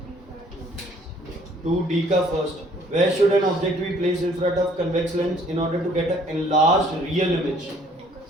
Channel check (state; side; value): normal; both; correlation 0.59